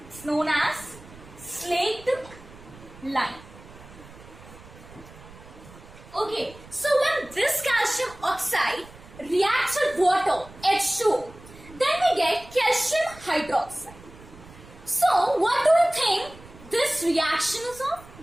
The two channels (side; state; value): right; noise; rumble, 20 dB below the sound